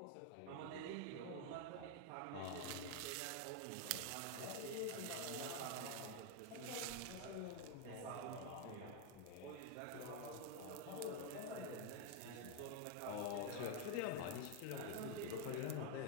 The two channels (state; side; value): different; both; correlation 0.01